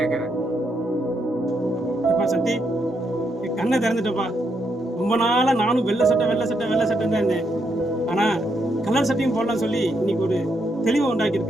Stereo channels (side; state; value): both; normal; correlation 0.78